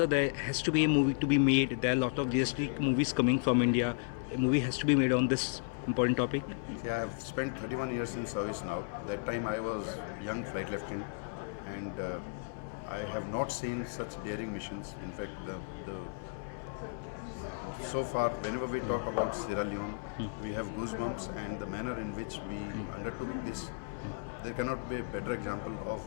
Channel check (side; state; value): right; quieter; 34.7 dB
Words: there has to be a movie to be made? There are a lot of realistic movies coming from India. A movie has to be made on this important topic? See, I have spent 31 years in service now. That time I was young flight lieutenant, and I have not seen such daring missions. In fact, so far, whenever we talk about Sierra Leone, we have goosebumps, and the manner in which we undertook this, there cannot be a better example of